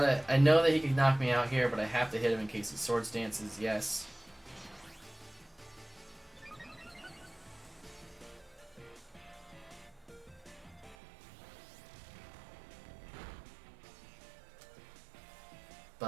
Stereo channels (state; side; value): drops out; left; at 11.0 s